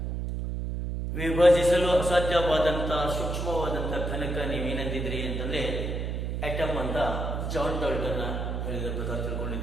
ವಿಭಜಿಸಲು ಅಸಾಧ್ಯವಾದಂಥ ಸೂಕ್ಷ್ಮವಾದಂಥ ಘನಕ ನೀವೇನಂದಿದ್ರಿ ಅಂತಂದರೆ atom ಅಂತ John Dalton ಹೇಳಿದ ಪ್ರಕಾರ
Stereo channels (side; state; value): right; noise; hum, 2 dB below the sound